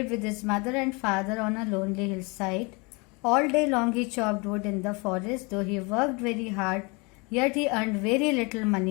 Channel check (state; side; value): quieter; right; 28.9 dB